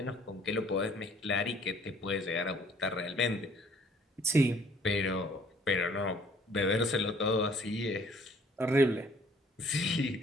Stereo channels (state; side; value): normal; both; correlation 0.58